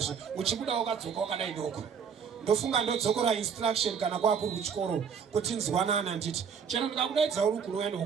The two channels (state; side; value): quieter; left; 6.8 dB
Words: uchibuda wakadzoka wakadai doko. Ndofunga ndodzokora instruction kana kwakuri kuchikoro kuti nzwanana nditi chero ndikakudaidza uri kunouya